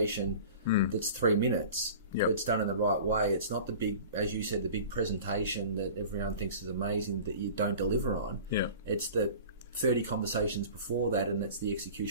that's 3 minutes. Yep. But it's done in the right way. It's not the big, as you said, the big presentation that everyone thinks is amazing that you don't deliver on. Yeah. It's the 30 conversations before that, and that's the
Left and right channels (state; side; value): inverted; both; correlation -0.40